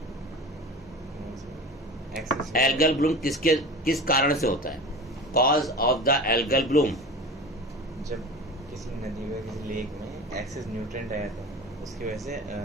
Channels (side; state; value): both; normal; correlation 0.34